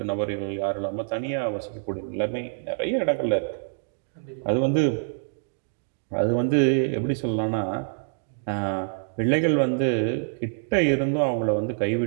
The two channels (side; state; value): left; silent; digital silence